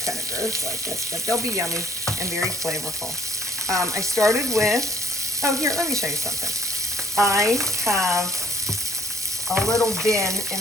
kind of gross like this, but they'll be yummy and very flavorful. I started with, oh, here, let me show you something. I have a little bin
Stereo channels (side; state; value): both; normal; correlation 0.59